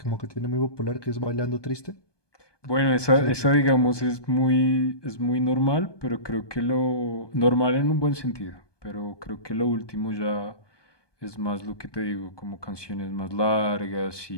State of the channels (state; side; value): late; right; 1.2 ms